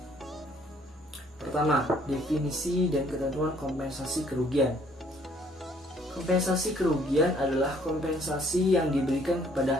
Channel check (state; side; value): normal; both; correlation 0.62